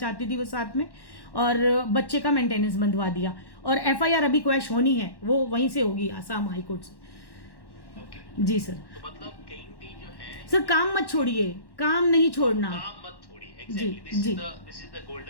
थी वो साथ में, और बच्चे का मेंटेनेंस बंधवा दिया। और FIR अभी क्वैश होनी है, वो वहीं से होगी आसाम हाई कोर्ट से। जी सर। तो मतलब कहीं भी जो है सर काम मत छोड़िए, काम नहीं छोड़ना, काम मत छोड़िए। Exactly this is the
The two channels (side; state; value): right; late; 1.1 ms